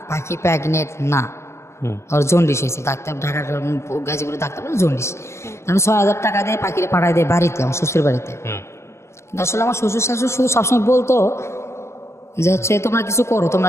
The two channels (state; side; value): late; right; 0.13 ms